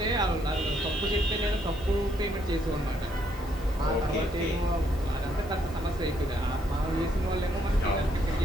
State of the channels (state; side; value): normal; both; correlation 0.72